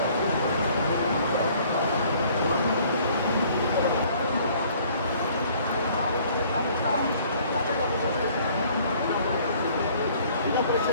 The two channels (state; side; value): inverted; both; correlation -0.57